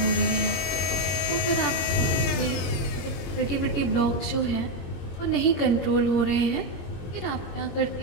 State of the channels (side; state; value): right; late; 21 ms